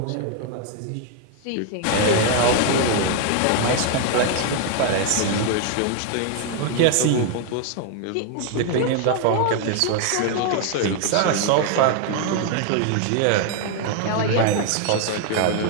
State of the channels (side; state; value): both; different; correlation 0.00